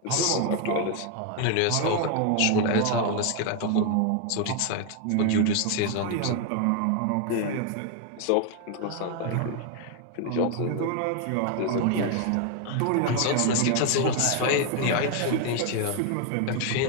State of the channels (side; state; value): both; different; correlation 0.01